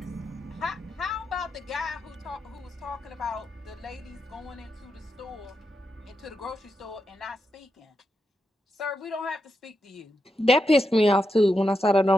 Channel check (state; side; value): normal; both; correlation 0.86